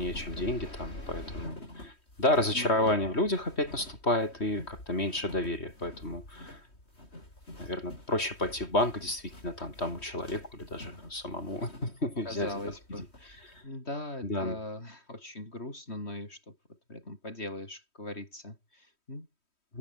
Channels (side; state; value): right; late; 3.1 ms